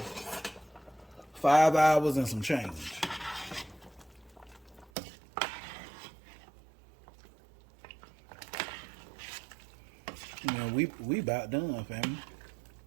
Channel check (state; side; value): drops out; left; at 4.9 s